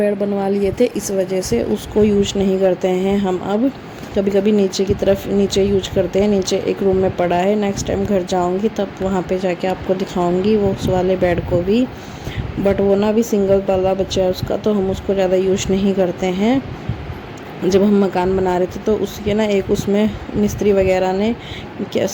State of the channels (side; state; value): both; identical; correlation 1.00